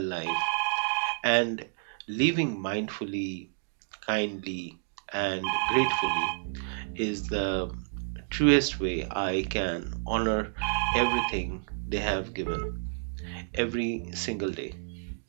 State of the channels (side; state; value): left; silent; digital silence